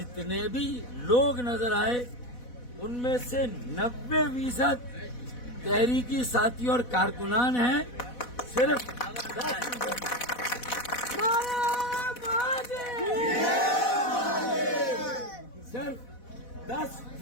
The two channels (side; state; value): right; late; 4.1 ms